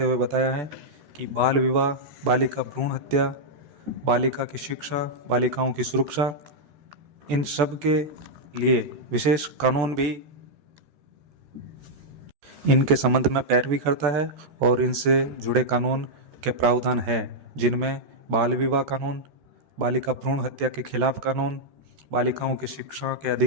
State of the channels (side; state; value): left; late; 14 ms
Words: हुए बताया है कि बाल विवाह, बालिका भ्रूण हत्या, बालिका की शिक्षा, बालिकाओं की सुरक्षा, इन सब के लिए विशेष कानून भी इनके संबंध में पैरवी करता है और इनसे जुड़े कानून के प्रावधान है, जिनमें बाल विवाह कानून, बालिका भ्रूण हत्या के खिलाफ कानून, बालिकाओं की शिक्षा के